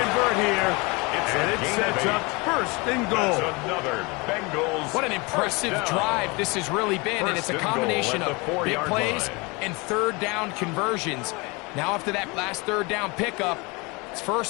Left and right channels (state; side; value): quieter; right; 27.0 dB